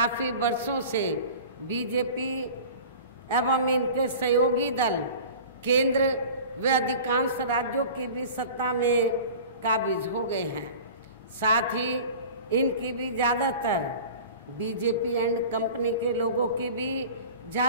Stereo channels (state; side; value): inverted; both; correlation -0.39